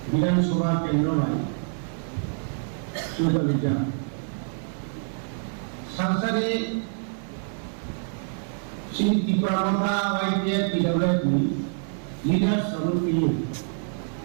Viধাnsabha কেন্দ্রয় সুযোগিতা সংসদে Shri Tripura YPF PWD leaders of PU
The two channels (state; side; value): silent; left; 61 dB below the other